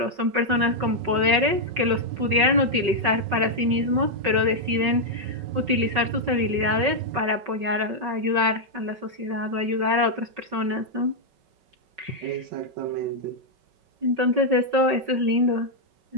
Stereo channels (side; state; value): left; late; 5.3 ms